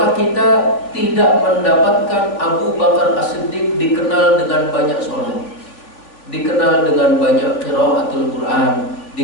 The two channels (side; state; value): right; late; 3.4 ms